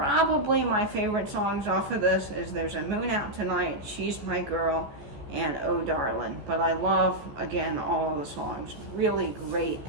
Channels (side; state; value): left; late; 14 ms